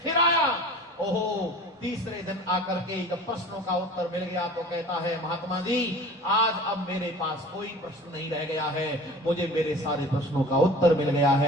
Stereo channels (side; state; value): both; normal; correlation 0.41